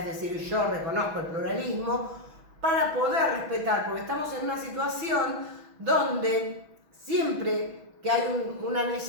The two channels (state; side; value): late; left; 6.1 ms